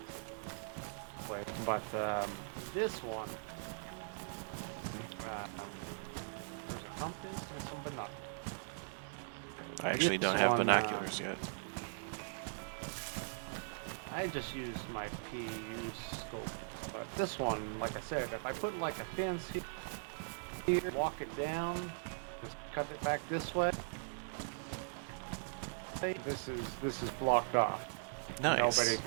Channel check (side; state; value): left; silent; digital silence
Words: But this one, um, there's a compass and some binoculars. I actually don't have binoculars yet. I just use my PU scope. But this one, like I said, if I put like a fence here, walk it down, just cut it back this way, this is blocked off. Nobody Nice.